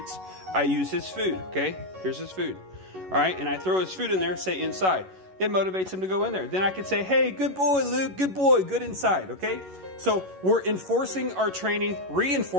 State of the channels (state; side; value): late; left; 11 ms